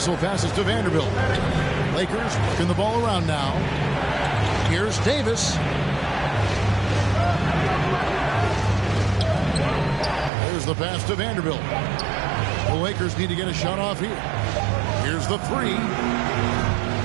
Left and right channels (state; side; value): drops out; left; at 10.3 s